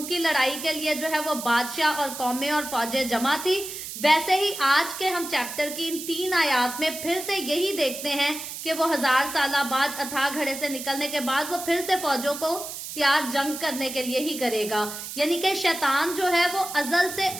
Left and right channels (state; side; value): noise; right; hiss, 9 dB below the sound